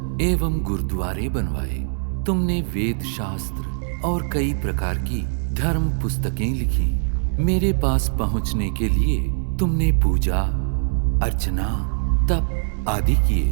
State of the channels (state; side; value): silent; left; 64 dB below the other